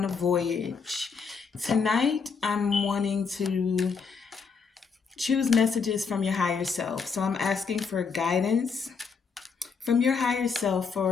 a voyage. Tonight, I'm wanting to choose messages from your higher self. So I'm asking for guidance from your higher self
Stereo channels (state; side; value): quieter; right; 5.5 dB